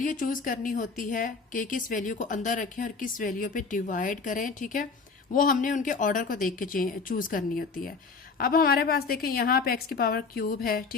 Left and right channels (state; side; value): quieter; right; 4.6 dB